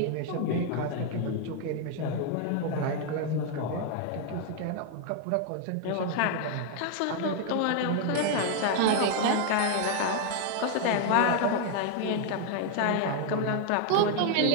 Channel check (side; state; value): both; different; correlation 0.00